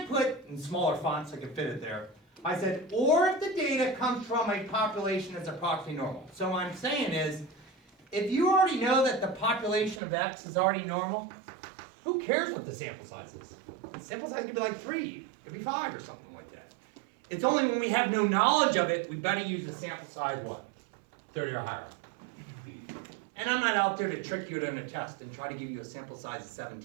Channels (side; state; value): left; drops out; at 10.0 s